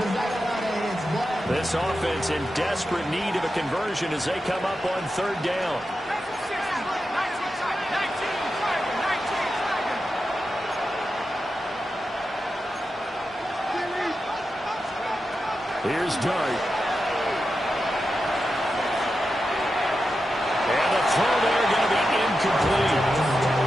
This offense in desperate need of a conversion as they come up on third down. Here's Dart. And the throw there going to be incomplete.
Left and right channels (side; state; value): both; normal; correlation 0.90